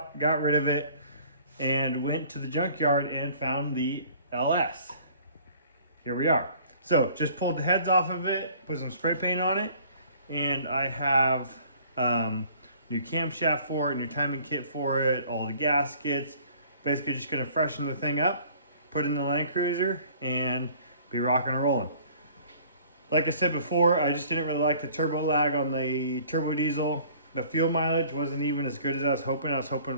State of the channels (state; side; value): inverted; both; correlation -0.53